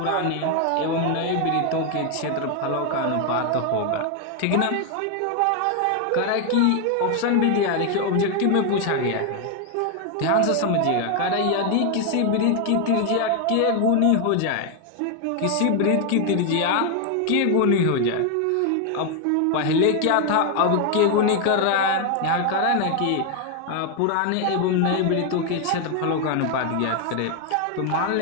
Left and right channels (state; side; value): different; both; correlation 0.01